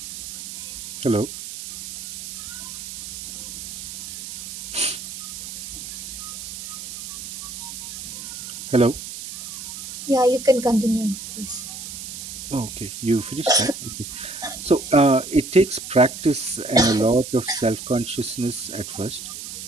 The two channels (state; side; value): noise; right; hiss, 10 dB below the sound